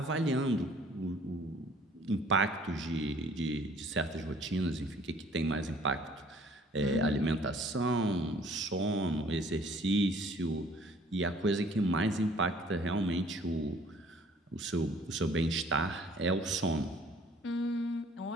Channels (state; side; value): normal; both; correlation 0.56